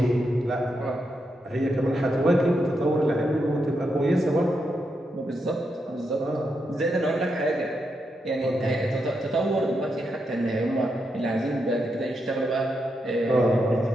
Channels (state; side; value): normal; both; correlation 0.83